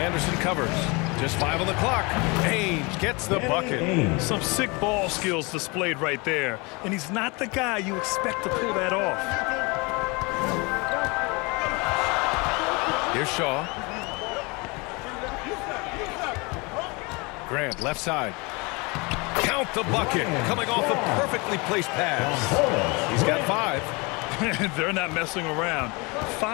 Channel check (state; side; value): quieter; right; 27.6 dB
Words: covers. Just 5 on the clock. Ainge gets the bucket. Some sick ball skills displayed right there. And he's not the guy you expect to pull that off. Here's Shaw. Grant, left side. Count the bucket. Coming off a perfectly placed pass. He's got 5. They're not messing around.